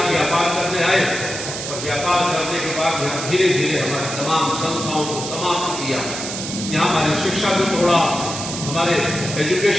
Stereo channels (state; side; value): noise; right; hiss, 6 dB below the sound